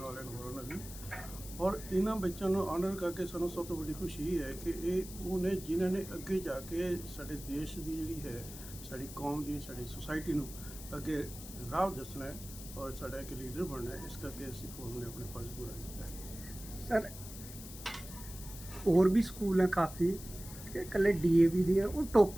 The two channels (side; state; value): left; noise; hiss, 13 dB below the sound